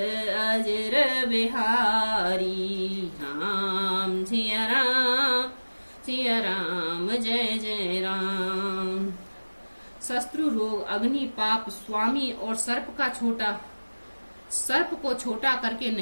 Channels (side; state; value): both; inverted; correlation -1.00